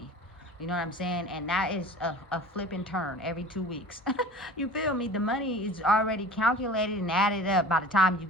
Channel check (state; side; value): normal; both; correlation 0.40